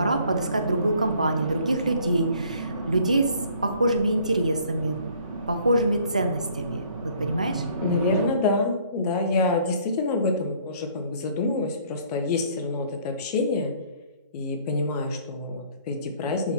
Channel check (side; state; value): both; inverted; correlation -0.58